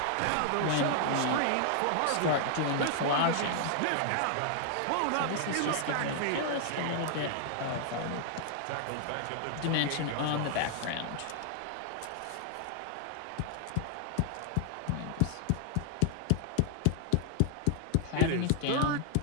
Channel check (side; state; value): both; different; correlation -0.01